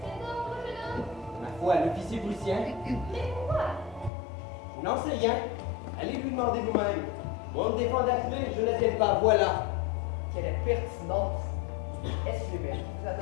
cet ordre, jeune homme? Ma foi, l'officier prussien. Mais pourquoi? Je n'en sais rien. Allez lui demander vous-même. Moi, on me défend d'atteler, je n'attelle pas, voilà. Quelle pertinence! Est-ce que Hubert vous a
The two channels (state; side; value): drops out; right; at 4.1 s